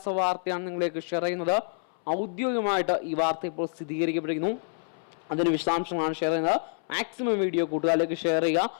വാർത്തയാണ് നിങ്ങളിലേക്ക് ഷെയർ ചെയ്യുന്നത്. ഔദ്യോഗികമായിട്ട് ഈ വാർത്ത ഇപ്പോൾ സ്ഥിരീകരിക്കപ്പെട്ടിരിക്കുന്നു. അതിന് വിശദാംശങ്ങളാണ് ഷെയർ ചെയ്യുന്നത്. മാക്സിമം വീഡിയോ കൂട്ടുകാരിലേക്ക് ഷെയർ ചെയ്യുക.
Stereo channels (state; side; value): silent; right; 60 dB below the other